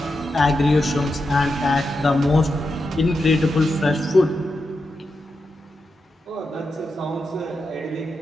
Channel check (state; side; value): normal; both; correlation 0.88